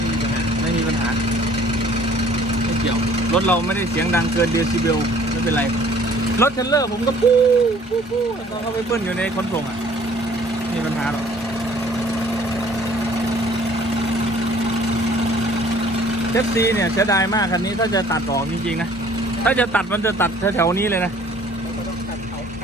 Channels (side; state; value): both; normal; correlation 0.55